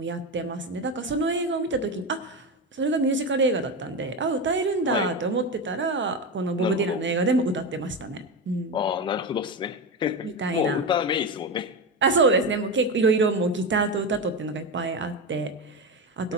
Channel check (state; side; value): normal; both; correlation 0.18